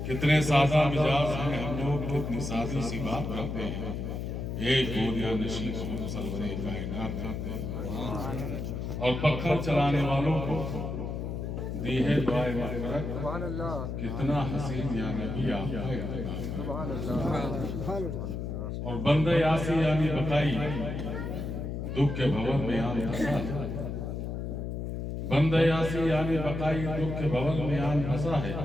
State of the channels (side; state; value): left; noise; hum, 4 dB below the sound